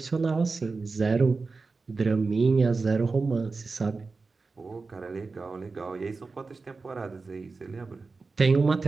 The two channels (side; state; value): left; quieter; 4.1 dB